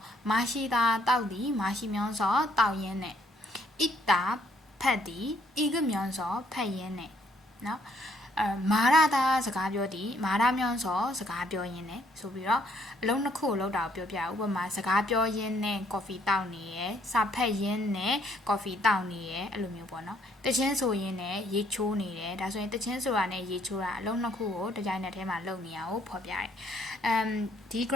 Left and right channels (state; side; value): normal; both; correlation 0.67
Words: မရှိတာတောက်သည်မရှိမြောင်းစောတောက်ရင်းနဲ့ဣတာဖတ်သည်ဤကမြောင်းစောဖတ်ရင်းနဲ့နော်မာရတာစကားပြောသည်မာရမြောင်းစောစကားပြောရင်းနဲ့ဆိုပြီးတော့အလုံးနှစ်ခုကိုလောက်တာကိုပြောပြဥပမာစကားပြောရင်းနဲ့ coffee တောက်နေရယ်စာဖတ်ရင်းနဲ့ coffee တောက်နေရယ်အဲ့လိုမျိုးပေါ့နော်တချင်းဆိုရင်းနဲ့ရေချိုးနေတယ်ဒါဆိုရင်တချင်းဆိုတာနဲ့ရေချိုးတာအလုံးနှစ်ခုကိုတစ်ကြိုင်နက်တည်းမှာလုပ်နေရအောင်ဖော်ပြတယ်ဒီ